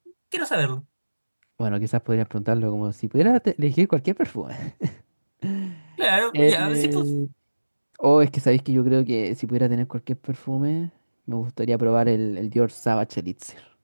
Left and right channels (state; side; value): inverted; both; correlation -1.00